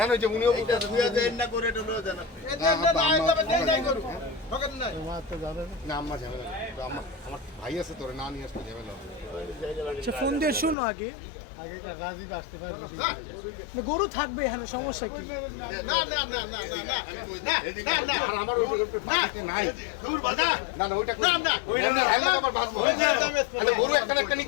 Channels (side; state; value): right; drops out; at 10.8 s